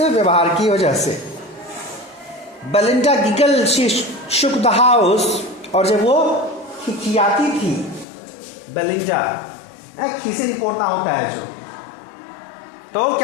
की वजह से। Belinda giggle, she shook the house, और जब वो खिखियाती थी बेलिंडा, खीसे पोड़ना होता है जो, तो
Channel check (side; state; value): right; drops out; at 8.1 s